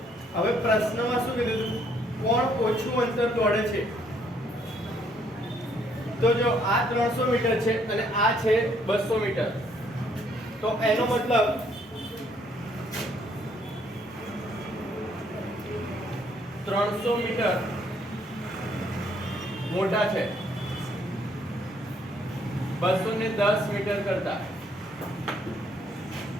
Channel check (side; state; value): both; normal; correlation 0.67